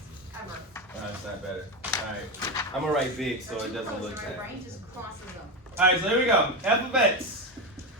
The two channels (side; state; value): both; normal; correlation 0.14